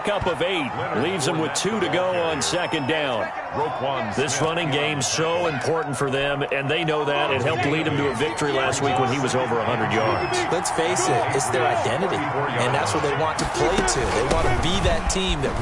of 8. Leaves him with 2 to go on 2nd down. This running game so important for them, and they know that. It helped lead him to a victory last week when he was over 100 yards. Let's face it, it's their identity, and that's what they want to play to. They want to be that team that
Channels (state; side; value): identical; both; correlation 1.00